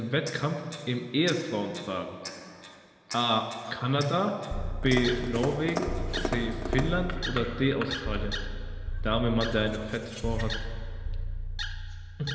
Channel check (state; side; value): identical; both; correlation 1.00